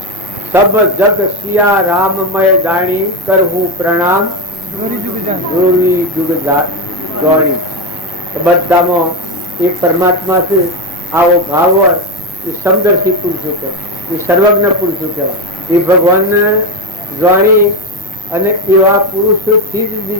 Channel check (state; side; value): normal; both; correlation 0.12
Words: સબ જગ સિયા રામમય જાણી કરહું પ્રણામ જોરી જુગ જોણી. બધામાં એક પરમાત્મા છે. આવો ભાવ હોય એ સમદર્શી પુરુષો કહેવાય, એ સર્વજ્ઞ પુરુષો કહેવાય. એ ભગવાનને જાણી અને એવા પુરુષોથી જ